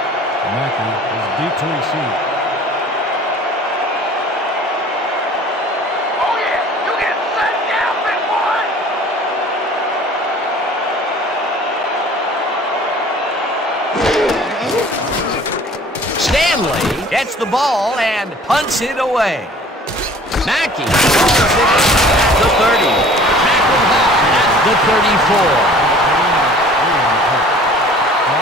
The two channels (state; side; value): normal; both; correlation 0.49